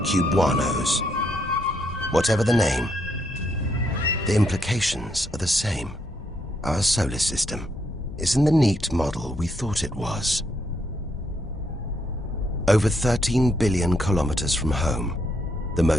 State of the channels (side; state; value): both; normal; correlation 0.76